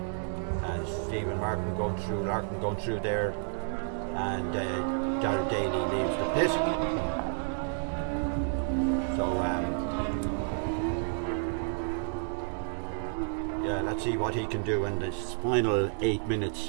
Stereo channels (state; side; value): silent; left; 57 dB below the other